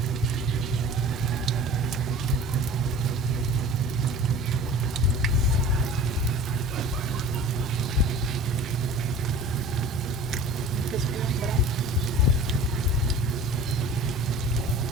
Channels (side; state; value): both; normal; correlation 0.40